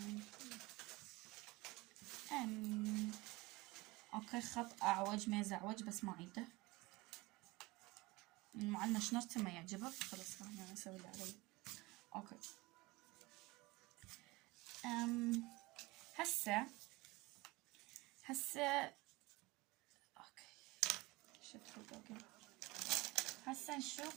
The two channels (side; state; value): left; quieter; 21.8 dB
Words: اوكي خط اعوج ما يزعوج بس ما عيده. المعلمة شنرسم ما يعجبك خلاص انا اسوي اللي علي. اوكي هسه اوكي هسه